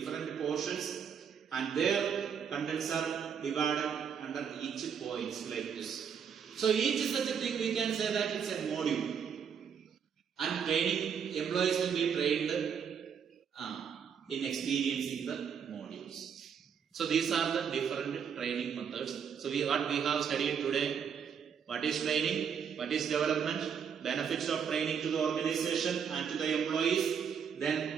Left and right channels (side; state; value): left; quieter; 7.3 dB